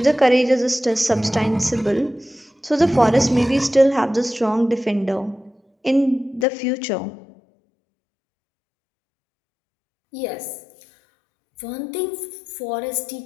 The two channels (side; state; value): right; drops out; at 6.5 s